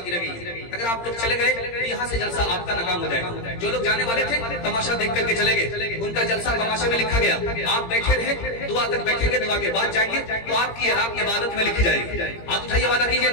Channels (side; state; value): right; late; 17 ms